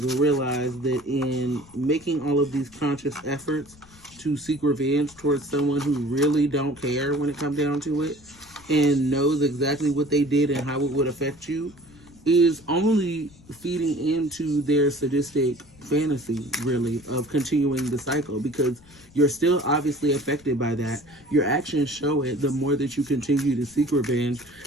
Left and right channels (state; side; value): noise; left; rumble, 25 dB below the sound